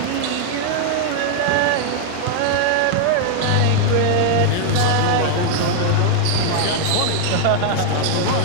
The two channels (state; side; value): different; both; correlation 0.00